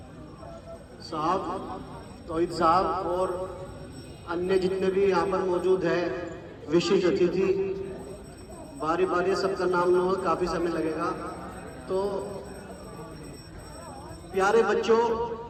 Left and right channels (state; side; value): identical; both; correlation 1.00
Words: साहब, तौहीद साहब और अन्य जितने भी यहाँ पर मौजूद हैं विशिष्ट अतिथि, बारी बारी सबका नाम लेना काफ़ी समय लगेगा। तो प्यारे बच्चों,